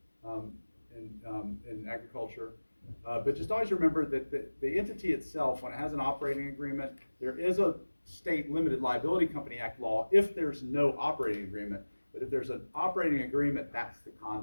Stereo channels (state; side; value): inverted; both; correlation -1.00